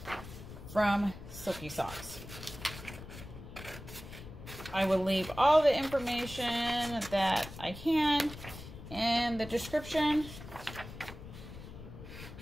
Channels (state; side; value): noise; left; rumble, 13 dB below the sound